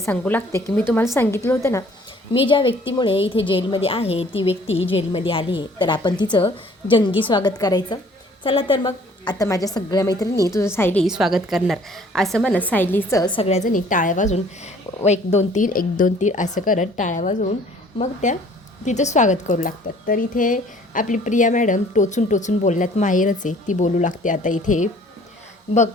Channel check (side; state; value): both; normal; correlation 0.56